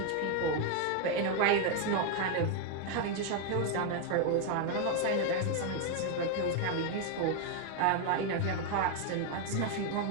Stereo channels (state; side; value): different; both; correlation 0.01